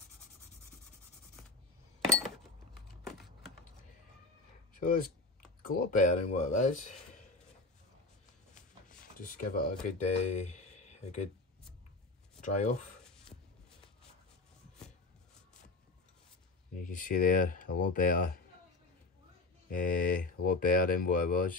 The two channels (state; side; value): quieter; right; 3.5 dB